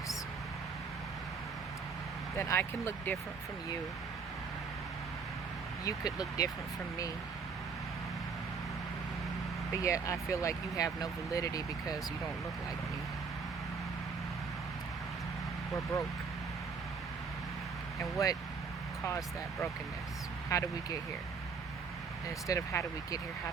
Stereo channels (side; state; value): left; quieter; 5.2 dB